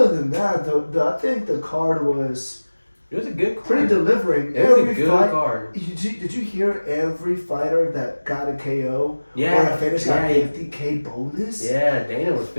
than that, I think the card was It was a good card. pretty delivering. It was a Every good fight. card. Did you hear every fighter that got a KO or Yeah. a finish got 50K bonus? Yeah, Dana was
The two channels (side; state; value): both; inverted; correlation -1.00